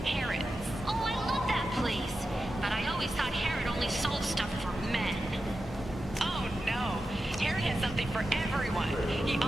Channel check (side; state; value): both; normal; correlation 0.91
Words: Harrods. Oh, I love that place. But I always thought Harrod only sold stuff for men. Oh no, Harrod has something for everyone. He